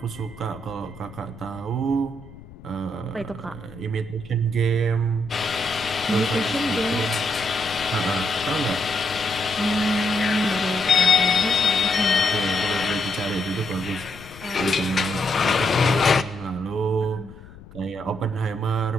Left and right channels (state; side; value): noise; left; rumble, 19 dB below the sound